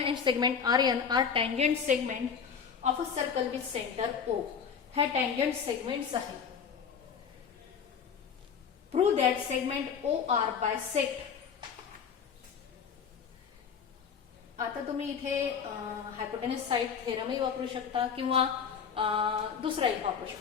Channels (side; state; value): right; quieter; 6.8 dB